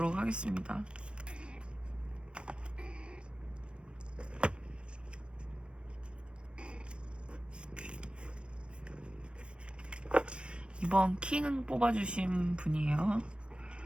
하겠습니다. 이번 킹 뽑아주신 분이에요.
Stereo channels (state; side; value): late; left; 0.056 ms